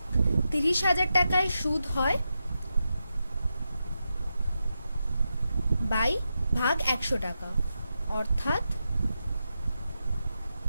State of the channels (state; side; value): inverted; both; correlation -0.88